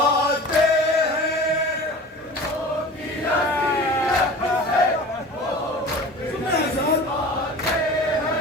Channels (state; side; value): normal; both; correlation 0.38